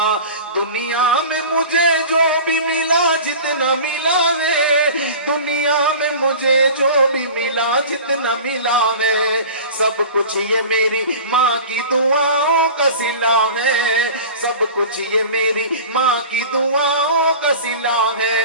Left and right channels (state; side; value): inverted; both; correlation -0.37